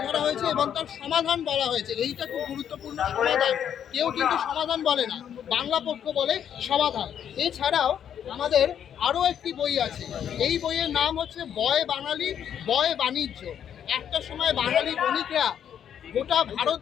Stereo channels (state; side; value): quieter; right; 9.1 dB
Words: ধরা হয়েছে এবং তার সমাধান বলা হয়েছে। এইটা খুব গুরুত্বপূর্ণ, সমাধান। কেউ কিন্তু সমাধান বলে না, বাংলা পক্ষ বলে সমাধান। এছাড়াও আমাদের আরও একটি বই আছে। এই বইয়ের নাম হচ্ছে বয় বাঙালি বয় বাণিজ্য। একটা সময় বাঙালি বণিকরা গোটা